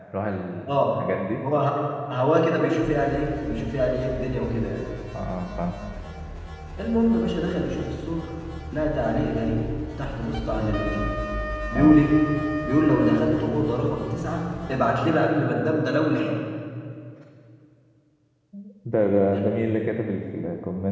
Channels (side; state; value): both; identical; correlation 1.00